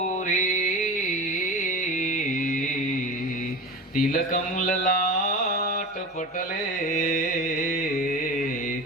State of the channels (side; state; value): both; normal; correlation 0.30